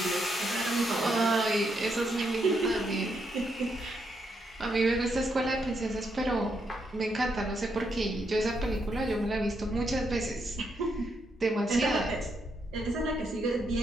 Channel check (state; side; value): normal; both; correlation 0.79